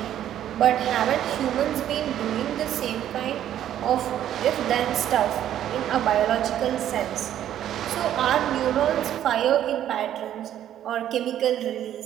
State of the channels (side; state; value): left; quieter; 11.2 dB